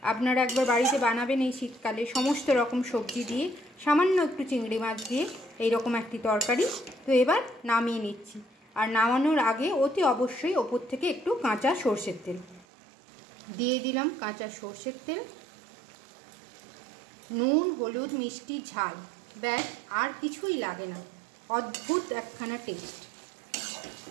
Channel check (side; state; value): left; drops out; at 12.7 s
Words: আপনারা একবার বাড়িতে বানাবেন এই শীতকালে, সমস্ত রকম সবজি দিয়ে, সামান্য একটু চিংড়ি মাছ দিয়ে এইরকম একটি তরকারি। তো এবার নামিয়ে নিচ্ছি। আর নামানোর আগে অতি অবশ্যই ওপর থেকে একটু কাঁচা সর্ষের তেল দিয়ে দিলাম। কাঁচা সর্ষের তেল, নুন, হলুদ, মিষ্টি, ঝাল, ব্যাস, আর কিছুই লাগে না। অদ্ভুত একখানা টেস্ট।